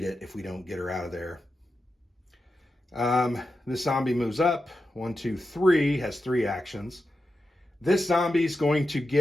it if we don't get her out of there. This zombie moves up. 1, 2, 3, has 3 actions. This zombie's going to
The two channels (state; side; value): normal; both; correlation 0.90